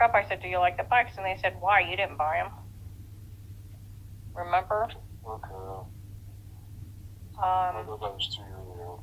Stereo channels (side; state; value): both; identical; correlation 1.00